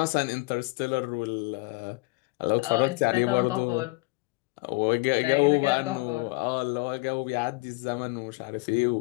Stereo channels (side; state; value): right; quieter; 26.1 dB